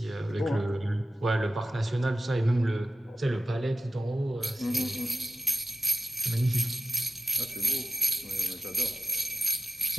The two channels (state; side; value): normal; both; correlation 0.91